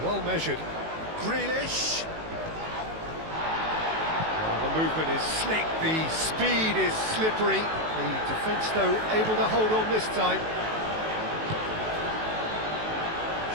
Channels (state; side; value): late; left; 18 ms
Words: well measured. Grealish. The movement is slick, the speed is slippery. The defence, though, able to hold on this time.